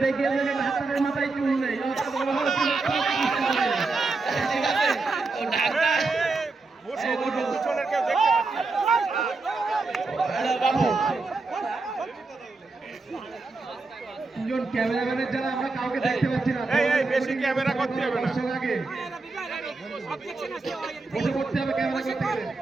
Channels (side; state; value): left; quieter; 3.8 dB